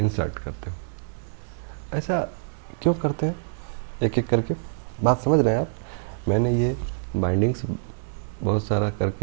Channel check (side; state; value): left; silent; 61 dB below the other